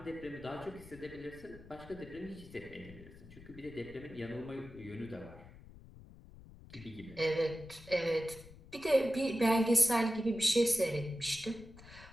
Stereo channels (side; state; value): left; noise; rumble, 18 dB below the sound